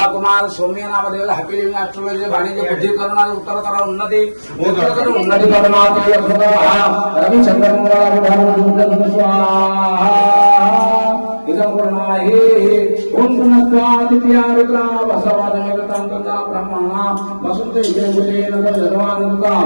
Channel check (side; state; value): both; inverted; correlation -1.00